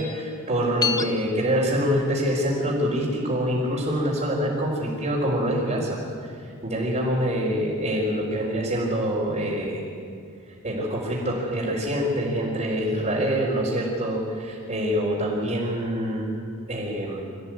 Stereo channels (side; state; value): both; normal; correlation 0.42